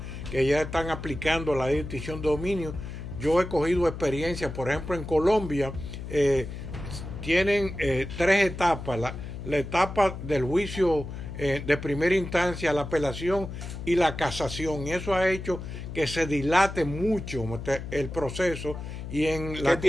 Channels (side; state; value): left; noise; hum, 9 dB below the sound